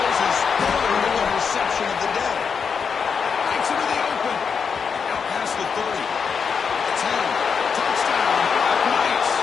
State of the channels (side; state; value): right; quieter; 6.2 dB